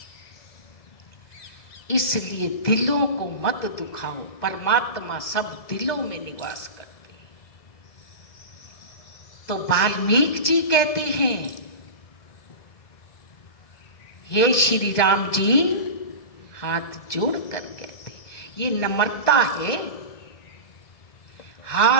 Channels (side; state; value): right; late; 1.7 ms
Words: इसलिए दिलों को मत दुखाओ, परमात्मा सब दिलों में निवास करते हैं। तो वाल्मीकि जी कहते हैं, हे श्री राम जी, हाथ जोड़कर कहते, ये नम्रता है।